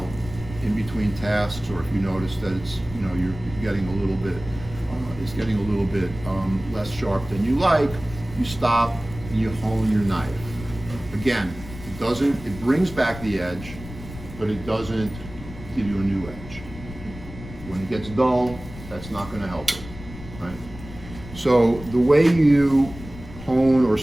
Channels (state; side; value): noise; left; rumble, 14 dB below the sound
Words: in between tasks, or if you notice that it's you're getting a little bit less sharp than you like, you stop and you hone your knife. Again, it brings back the edge, but it doesn't give you a new edge. When it gets dull, that's not going to help it, right? So the way you hone or